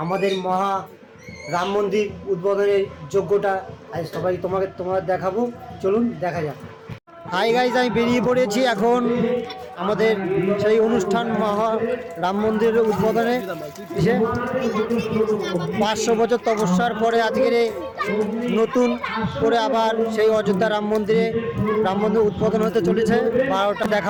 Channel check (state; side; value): identical; both; correlation 1.00